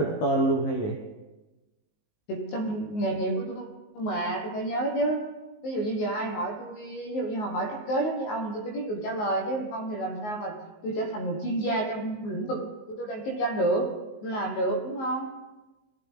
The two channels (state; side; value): late; right; 19 ms